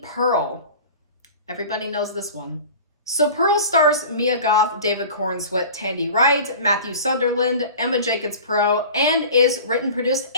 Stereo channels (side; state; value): both; inverted; correlation -0.38